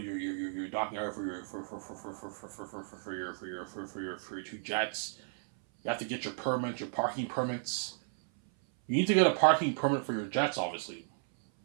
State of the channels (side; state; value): left; silent; 55 dB below the other